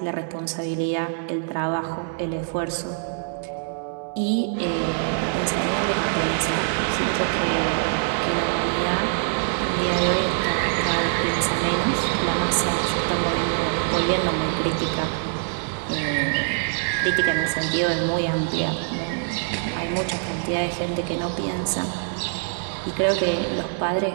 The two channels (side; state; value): left; silent; digital silence